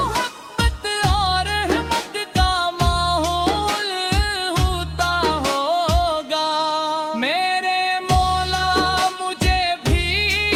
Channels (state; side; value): identical; both; correlation 1.00